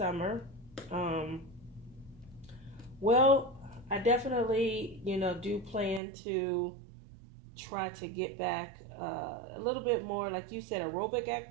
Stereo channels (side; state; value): left; drops out; at 6.0 s